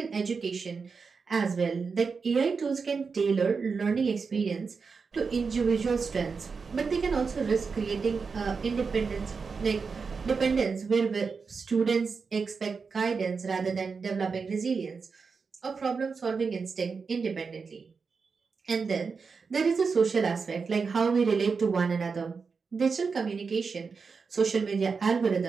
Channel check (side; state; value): left; quieter; 5.1 dB